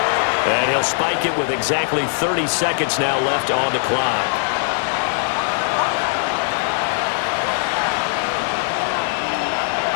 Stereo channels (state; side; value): silent; right; 65 dB below the other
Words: And he'll spike it with exactly 30 seconds now left on the clock.